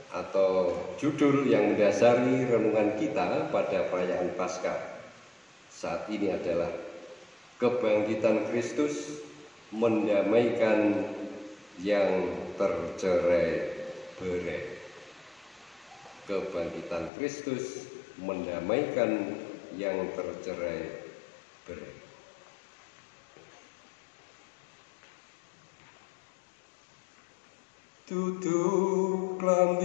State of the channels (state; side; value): drops out; right; at 17.1 s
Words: atau judul yang mendasari renungan kita pada perayaan Paskah saat ini adalah kebangkitan Kristus mendamaikan yang tercerai-berai. Kebangkitan Kristus mendamaikan yang tercerai-berai. Tutup